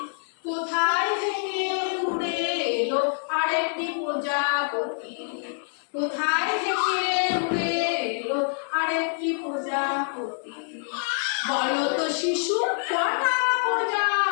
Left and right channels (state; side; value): silent; right; 58 dB below the other